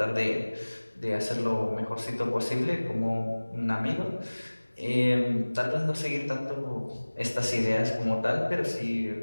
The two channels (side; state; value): both; inverted; correlation -1.00